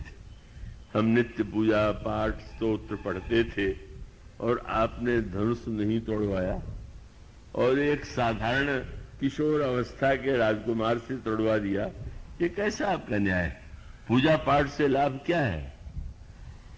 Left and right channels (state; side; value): identical; both; correlation 1.00